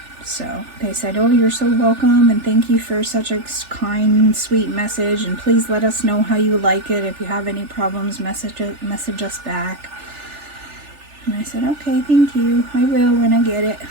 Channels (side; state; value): left; late; 3.4 ms